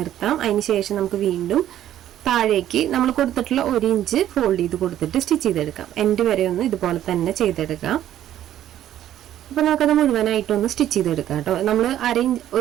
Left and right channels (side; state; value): left; quieter; 11.9 dB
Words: അതിന് ശേഷം നമുക്ക് വീണ്ടും താഴേക്ക് നമ്മൾ കൊടുത്തിട്ടുള്ള 1 ഇഞ്ച് ഫോൾഡ് ചെയ്ത് കൊടുത്തിട്ട് സ്റ്റിച്ച് ചെയ്തെടുക്കാം. എൻഡ് വരെ ഒന്ന് ഇതുപോലെ തന്നെ ചെയ്തെടുക്കാം. അപ്പോൾ നമുക്കത് മുഴുവനായിട്ടൊന്ന് സ്റ്റിച്ച് ചെയ്തെടുക്കാം കേട്ടോ. നമ്മൾ